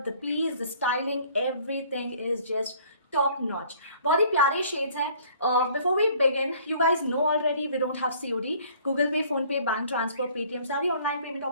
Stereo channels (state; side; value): inverted; both; correlation -0.56